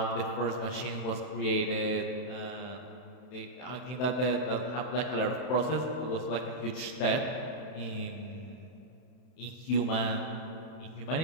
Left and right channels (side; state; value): right; late; 31 ms